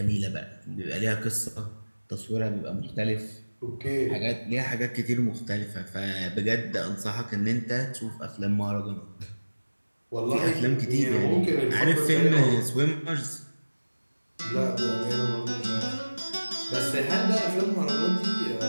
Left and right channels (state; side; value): inverted; both; correlation -1.00